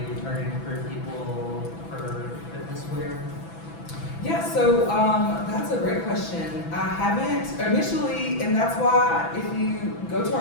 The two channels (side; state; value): right; late; 6.0 ms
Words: targeting for people for fitness wear? Yeah, so that's a great question. I haven't initially, and that's why if you go to